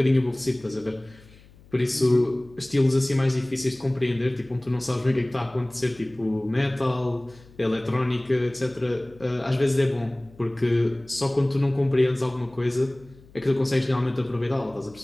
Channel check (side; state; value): left; noise; hum, 25 dB below the sound